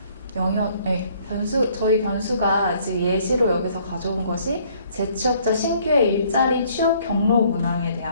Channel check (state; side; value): inverted; both; correlation -0.62